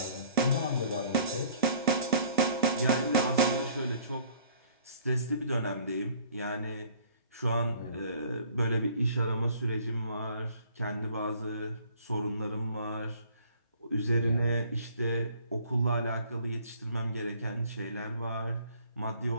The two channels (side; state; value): both; inverted; correlation -0.56